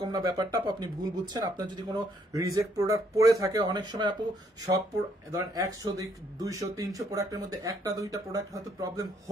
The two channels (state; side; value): normal; both; correlation 0.69